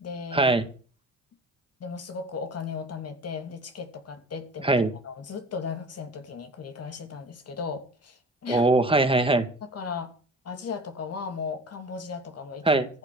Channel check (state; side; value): normal; both; correlation 0.40